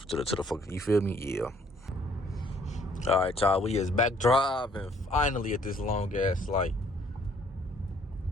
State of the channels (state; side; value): normal; both; correlation 0.62